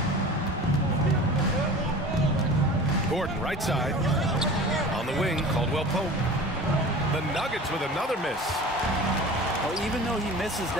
Gordon, right side. On the wing, Caldwell Pope. The Nuggets with another miss. Well, even though he misses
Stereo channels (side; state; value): both; normal; correlation 0.38